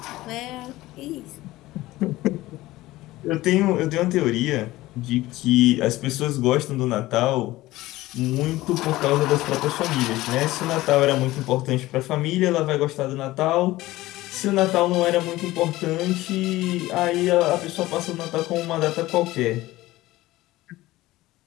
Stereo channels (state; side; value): quieter; right; 17.6 dB